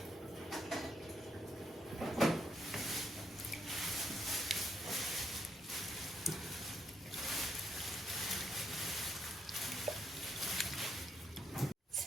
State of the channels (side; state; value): both; normal; correlation 0.76